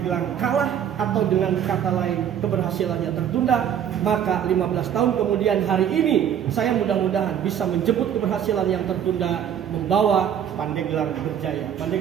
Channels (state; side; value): quieter; left; 9.3 dB